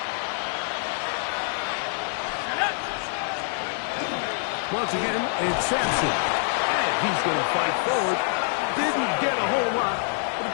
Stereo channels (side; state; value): right; silent; 61 dB below the other